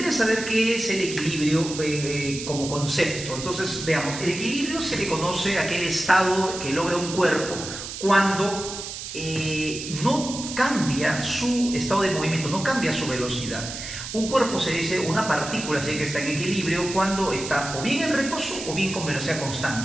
es saber qué es el equilibrio como concepto. Entonces, veamos, el equilibrio se le conoce a aquel estado que logra un cuerpo cuando no cambia su estado de movimiento, no cambia su velocidad. Un cuerpo se dice, una partícula se dice que está en equilibrio cuando está o bien en reposo o bien con velocidad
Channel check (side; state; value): right; noise; hiss, 8 dB below the sound